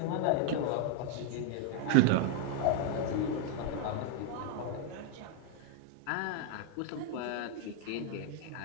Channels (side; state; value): both; different; correlation 0.00